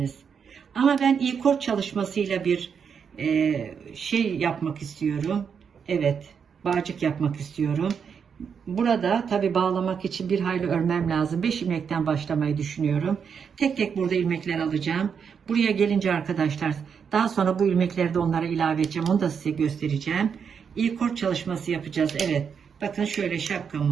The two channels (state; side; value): quieter; left; 6.8 dB